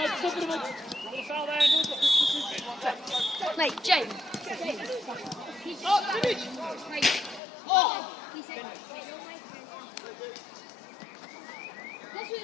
Mate, James. Oh, Jimmy! Oh! He said,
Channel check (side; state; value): right; drops out; at 7.4 s